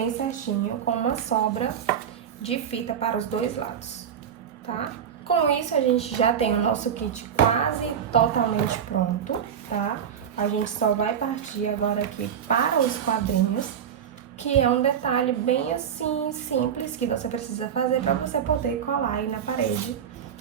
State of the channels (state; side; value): quieter; left; 8.4 dB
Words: certinho, com uma sobra de fita para os dois lados, tá? Com isso, a gente já tem o nosso kit quase totalmente pronto, tá? A gente só vai partir agora aqui para os quadrinhos, que é um detalhe bem assim, simples, que você precisa fazer para você poder colar aí na parede,